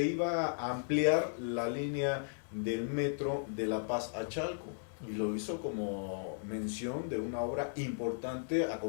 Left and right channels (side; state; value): right; silent; digital silence